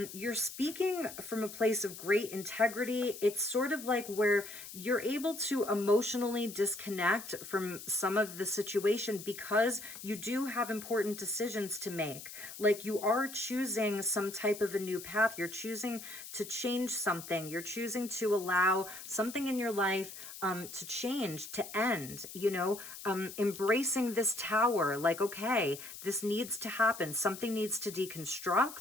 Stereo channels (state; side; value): noise; left; hiss, 12 dB below the sound